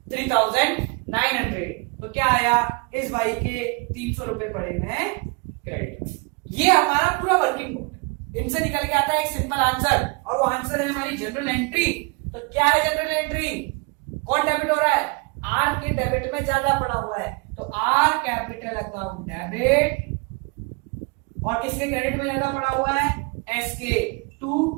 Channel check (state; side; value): quieter; left; 30.2 dB